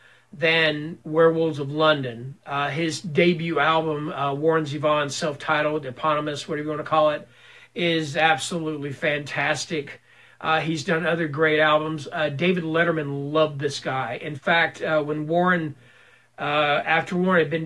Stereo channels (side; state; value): both; identical; correlation 1.00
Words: than Werewolves of London. His debut album, Warren Zevon, self-titled, eponymous, whatever you want to call it, is absolutely fantastic. He's done other great albums. David Letterman loved this guy. In fact, when Warren, after Warren had been